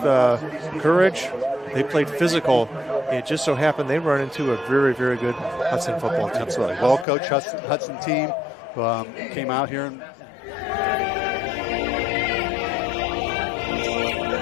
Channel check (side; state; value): right; drops out; at 7.1 s